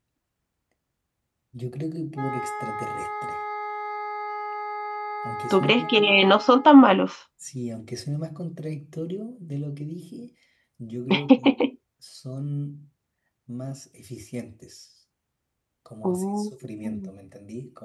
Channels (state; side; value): identical; both; correlation 1.00